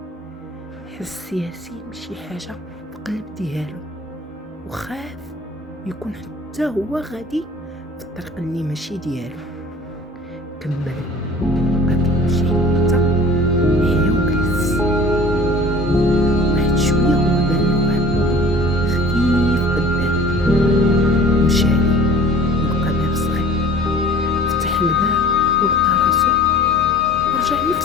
حس ياسين بشي حاجه في القلب ديالو وخاف يكون حتى هو غادي في الطريق اللي ماشي ديالو. كمل بقى كيمشي حتى حيا وجلس. واحد شويه هو بان له واحد الضوء خفيف قدام، مشى ليه ولقى باب صغير. فتح الباب ولقى راسو ورجع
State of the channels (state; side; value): normal; both; correlation 0.46